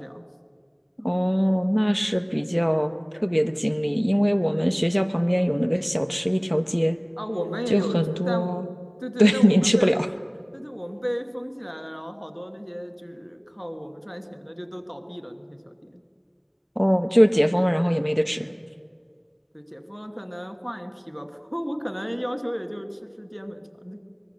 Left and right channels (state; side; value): identical; both; correlation 1.00